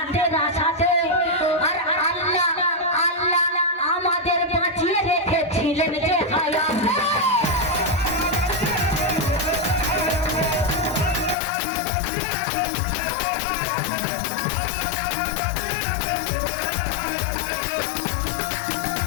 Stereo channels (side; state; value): right; drops out; at 11.4 s